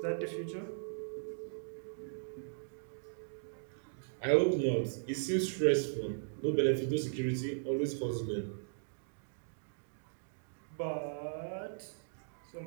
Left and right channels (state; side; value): silent; left; digital silence